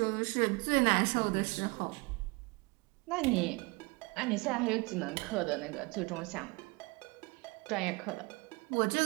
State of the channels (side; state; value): left; quieter; 26.3 dB